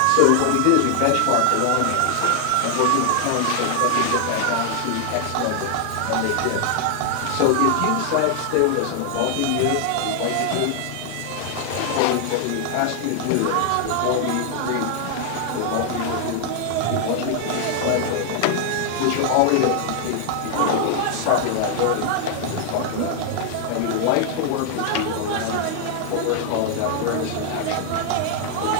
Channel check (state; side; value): different; both; correlation 0.00